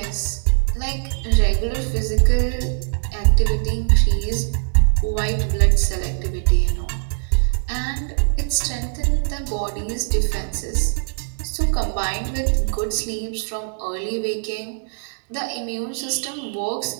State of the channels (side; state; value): left; silent; 62 dB below the other